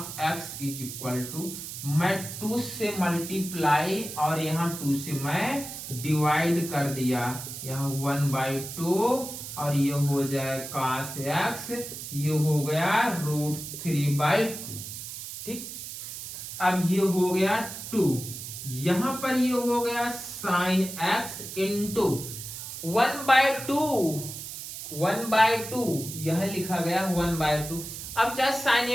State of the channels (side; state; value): right; noise; hiss, 9 dB below the sound